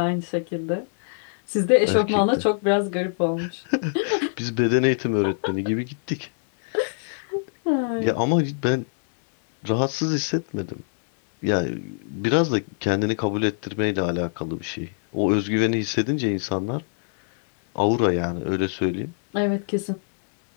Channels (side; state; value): right; silent; digital silence